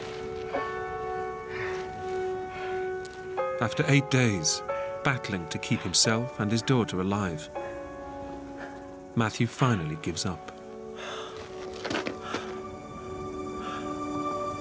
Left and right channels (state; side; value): identical; both; correlation 1.00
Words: After 8 days, battling to keep himself and his daughter alive, Matthew finally gives up.